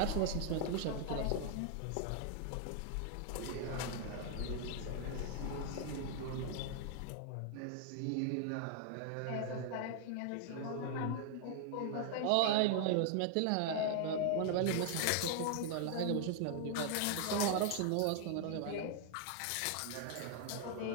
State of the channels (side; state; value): both; different; correlation 0.00